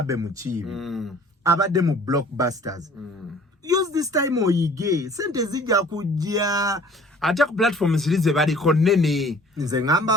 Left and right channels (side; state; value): both; normal; correlation 0.52